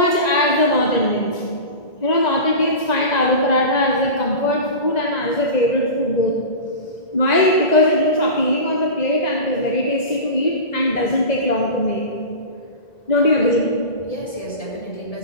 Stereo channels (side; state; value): right; late; 1.9 ms